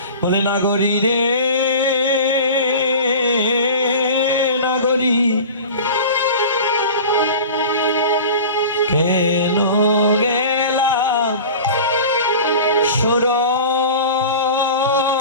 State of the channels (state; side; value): inverted; both; correlation -0.36